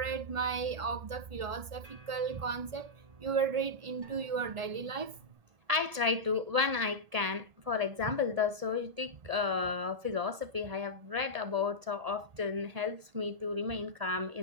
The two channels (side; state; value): left; late; 1.7 ms